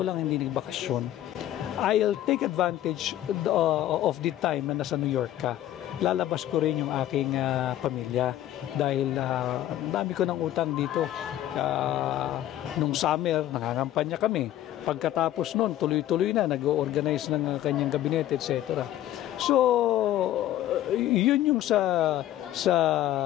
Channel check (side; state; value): right; quieter; 13.0 dB